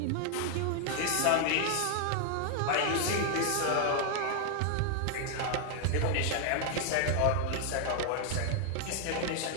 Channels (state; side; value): different; both; correlation 0.00